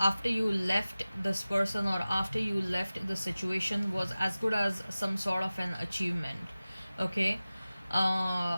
you left this person, or after you left the situation, was as good as some sort of an achievement. Okay,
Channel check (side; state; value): both; inverted; correlation -0.97